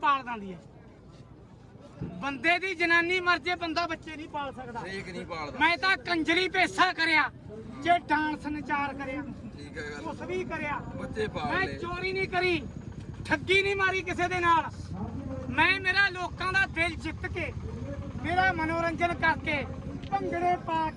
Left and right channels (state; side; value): identical; both; correlation 1.00